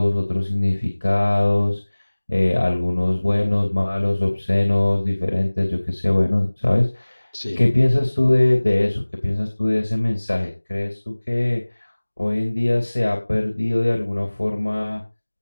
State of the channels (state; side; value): inverted; both; correlation -1.00